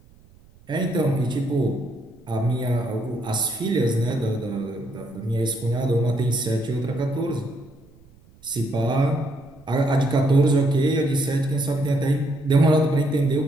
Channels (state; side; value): noise; right; rumble, 27 dB below the sound